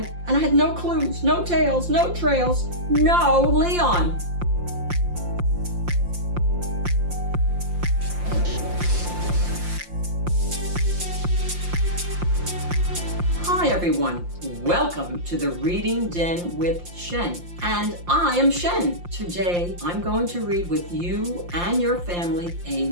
and I had no clues, no tails, no trails, no Leon. Hi everyone, welcome to the Reading Den with Shen, and I am Shen. Today I'm going to read with you and your family a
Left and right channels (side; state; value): left; late; 5.7 ms